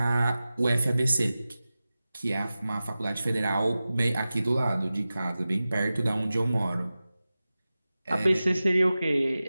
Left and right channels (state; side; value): inverted; both; correlation -0.95